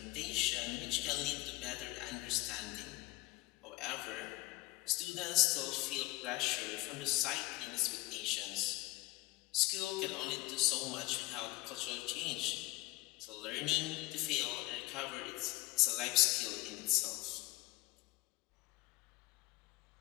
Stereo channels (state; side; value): quieter; right; 19.8 dB